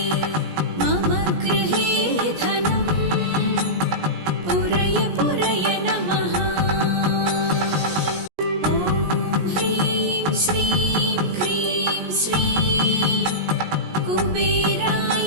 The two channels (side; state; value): left; late; 17 ms